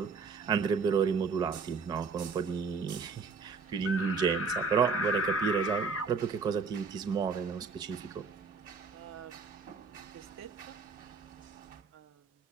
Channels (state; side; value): quieter; left; 4.9 dB